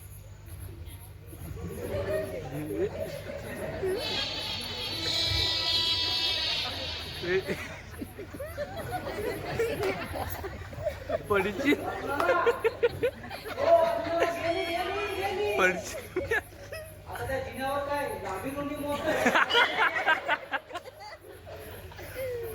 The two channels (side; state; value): both; identical; correlation 1.00